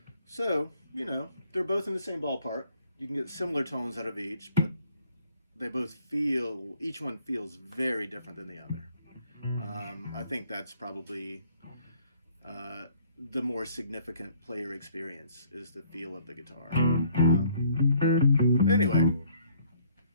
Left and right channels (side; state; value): both; inverted; correlation -0.61